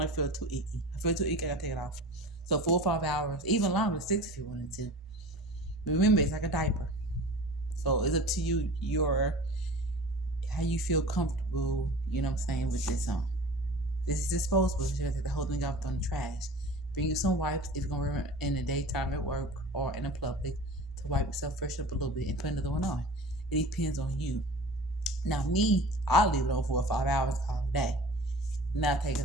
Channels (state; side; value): normal; both; correlation 0.39